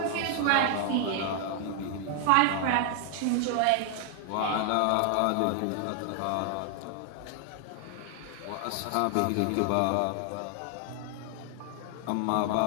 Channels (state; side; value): different; both; correlation 0.00